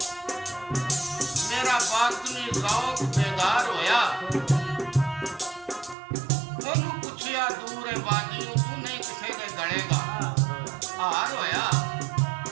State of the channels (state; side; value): drops out; left; at 6.0 s